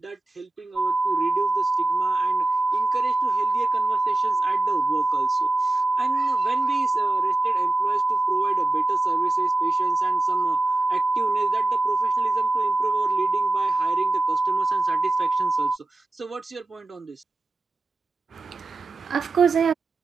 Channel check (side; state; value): left; quieter; 3.1 dB